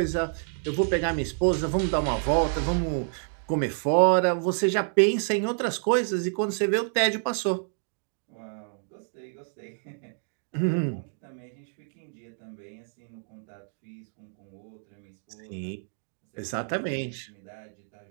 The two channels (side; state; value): left; silent; digital silence